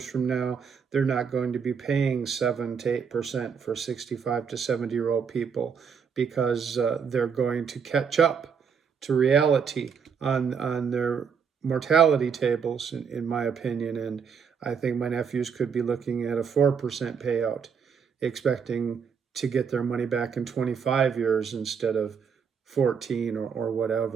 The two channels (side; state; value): left; quieter; 6.6 dB